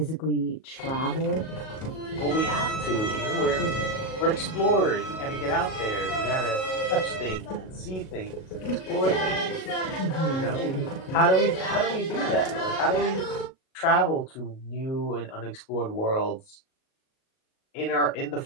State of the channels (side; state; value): right; late; 38 ms